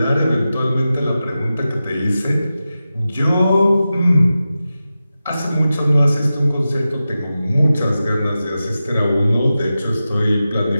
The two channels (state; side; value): inverted; both; correlation -0.93